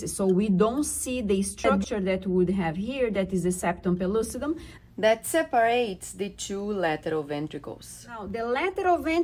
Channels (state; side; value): identical; both; correlation 1.00